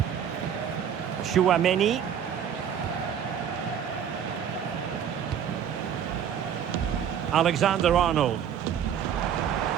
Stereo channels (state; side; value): quieter; left; 8.7 dB